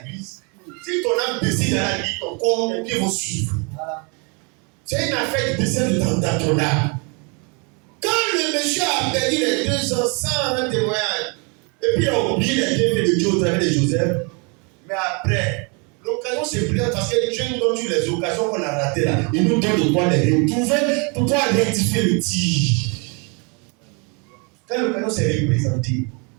Si ton âme décide dans l'église, ton corps, les pieds vont suivre. C'est une affaire de décès dans ton âme. Quand le monsieur a perdu les 2 ans sans un témoignage, et puis il a oublié les bienfaits de Dieu au travers de Joseph, mais après, l'occasion se présente parce que Dieu nous donne les occasions qu'on a ratées là. Il nous donne de quoi les retrouver pour pouvoir rectifier le tir. Quand l'occasion s'est représentée,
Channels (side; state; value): left; quieter; 33.5 dB